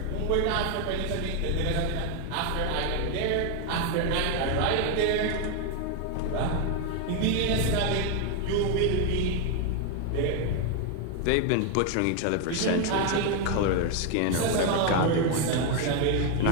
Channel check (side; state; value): both; different; correlation 0.01